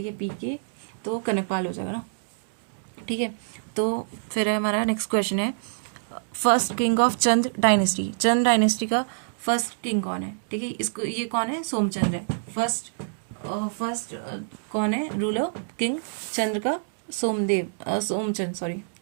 है, पीके तो कनकपाल हो जाएगा ना, ठीक है। तो फिर है हमारा नेक्स्ट क्वेश्चन है, first king of Chand dynasty, Chand dynasty का फर्स्ट किंग कौन है, ठीक है। इसको ये कौन है, सोमचंद्र है। फर्स्ट कौन है रूलर किंग चंद्र का,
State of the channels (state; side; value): silent; left; digital silence